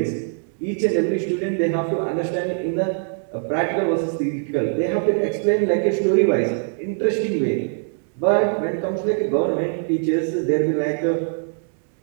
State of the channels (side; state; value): left; silent; digital silence